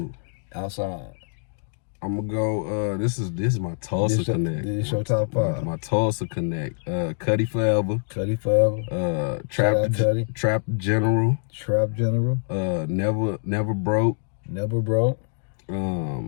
Outside. I'm gonna go. This is my Tulsa Connect. This is your top 5. My Tulsa Connect. Cuddy Forever. Trap General. Never Broke.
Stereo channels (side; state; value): right; silent; 62 dB below the other